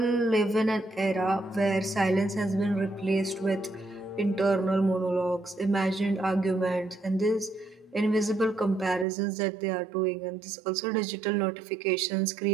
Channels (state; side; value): drops out; left; at 9.1 s